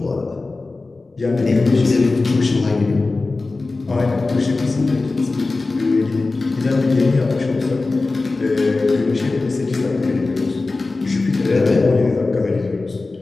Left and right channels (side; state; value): right; quieter; 3.5 dB